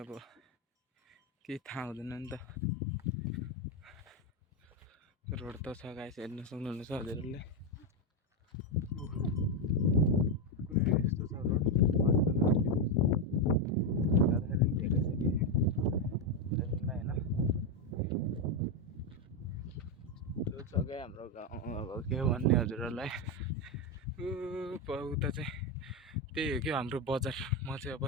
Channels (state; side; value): normal; both; correlation 0.07